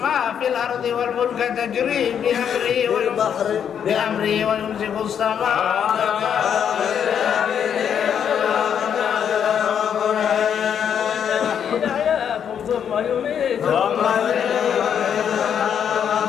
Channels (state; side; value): quieter; right; 8.3 dB